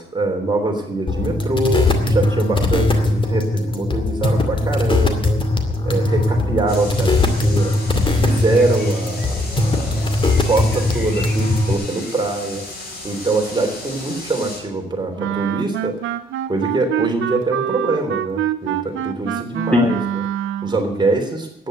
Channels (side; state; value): both; normal; correlation 0.67